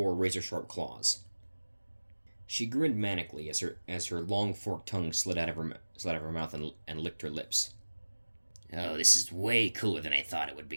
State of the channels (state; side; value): inverted; both; correlation -1.00